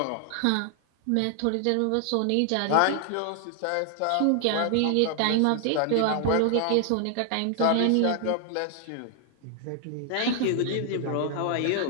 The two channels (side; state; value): both; different; correlation 0.00